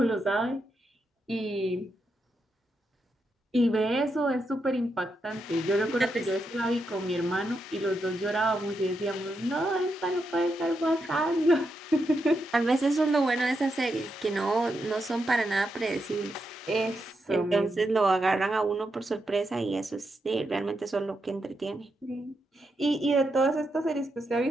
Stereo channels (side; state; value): both; normal; correlation 0.84